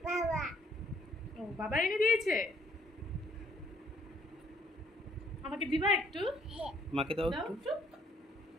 ও বাবা এনে দিয়েছে। আমাকে দিবা একটু? মাকে দাও একটু।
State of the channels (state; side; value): normal; both; correlation 0.65